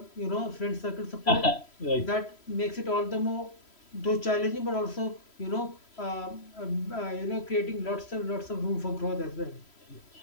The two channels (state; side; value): late; right; 3.0 ms